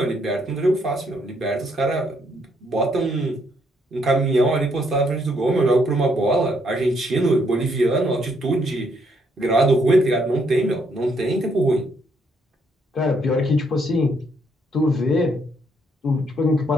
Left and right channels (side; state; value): both; normal; correlation 0.72